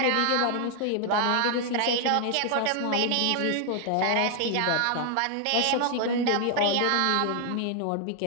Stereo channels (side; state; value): both; different; correlation 0.00